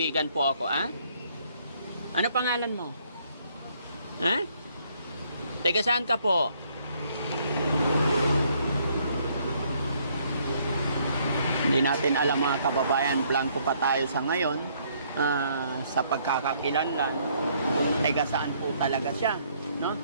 po ako, ha? Ano pangalan mo? Ha? Teka, saan ka po? Hindi natin alam, mga kababayan. Blanco pa tayo sa ngayon. Sa pagkakakilanlan. Teka, saan po talaga siya? No?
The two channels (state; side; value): inverted; both; correlation -0.67